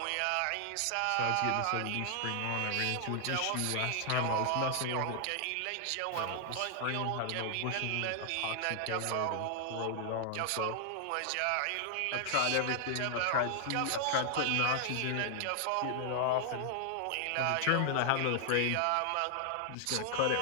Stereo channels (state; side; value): different; both; correlation -0.01